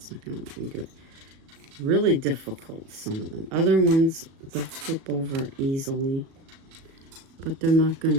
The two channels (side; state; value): left; late; 37 ms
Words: not going to let me do it. Really difficult, some of them. Other ones, they'll flip over easily. But they're not going